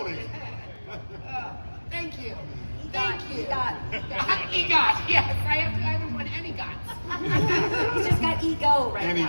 Thank you. Thank you. EGOT, yes. I haven't won any GOTs. He's just got ego right And he now.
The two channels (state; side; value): inverted; both; correlation -1.00